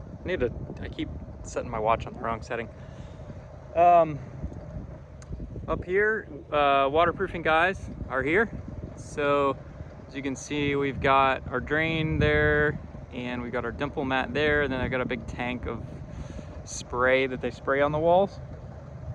know. I keep setting my watch on the wrong setting. Up here, waterproofing guys are here. So as you can see, we've got our drain there and we got our dimple mat there. And then I got a big tank of spray that they spray on the walls.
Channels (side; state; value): both; identical; correlation 1.00